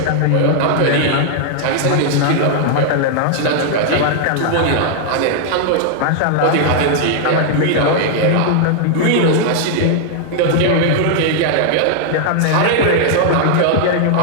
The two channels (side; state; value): both; different; correlation -0.01